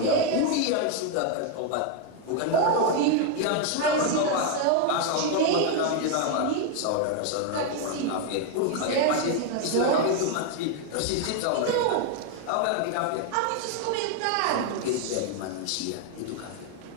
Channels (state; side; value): different; both; correlation 0.01